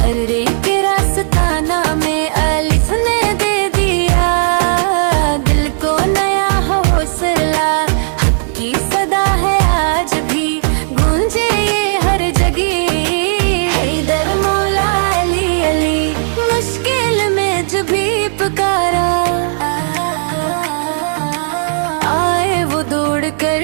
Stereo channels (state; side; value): silent; left; digital silence